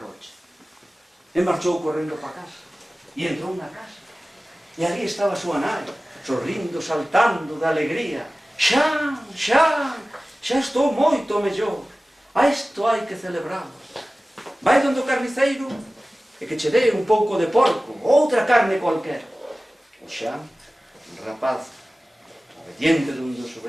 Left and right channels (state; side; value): normal; both; correlation 0.97